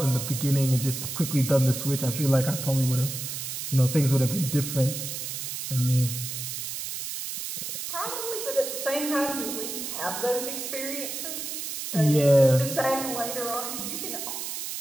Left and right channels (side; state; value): right; noise; hiss, 5 dB below the sound